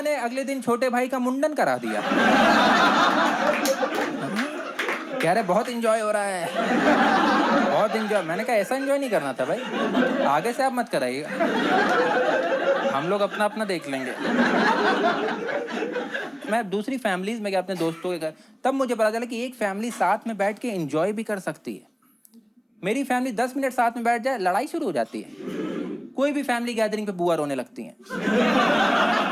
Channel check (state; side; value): identical; both; correlation 1.00